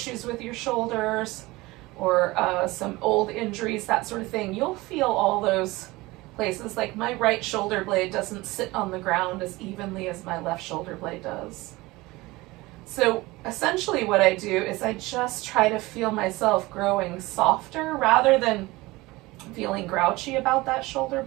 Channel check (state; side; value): quieter; left; 20.9 dB